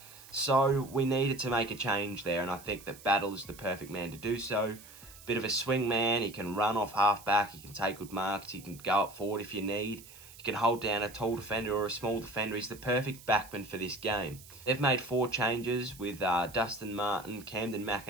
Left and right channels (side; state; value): right; noise; hiss, 19 dB below the sound